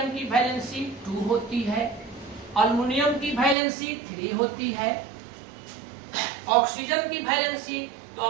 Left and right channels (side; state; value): left; drops out; at 3.6 s